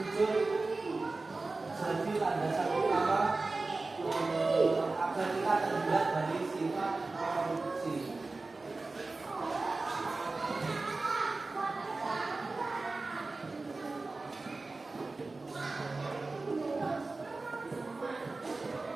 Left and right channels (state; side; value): quieter; left; 3.5 dB